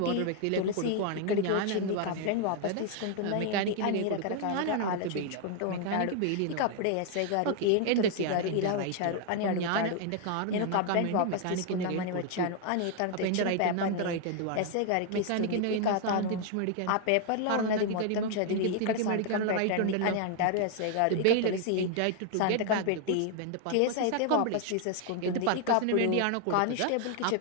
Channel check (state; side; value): different; both; correlation 0.00